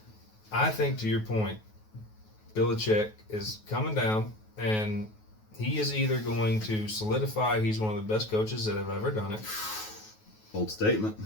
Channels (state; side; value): late; right; 9.3 ms